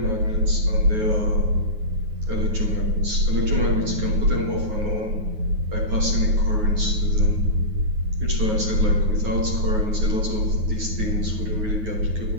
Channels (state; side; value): late; left; 9.4 ms